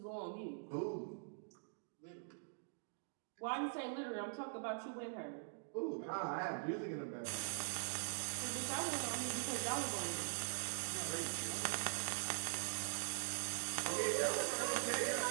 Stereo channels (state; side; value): silent; left; digital silence